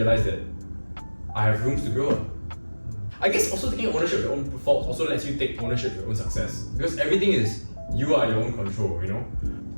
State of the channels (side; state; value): both; inverted; correlation -1.00